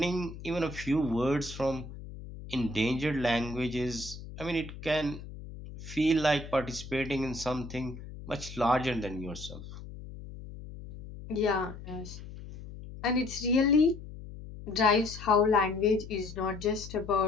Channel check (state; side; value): noise; left; hum, 13 dB below the sound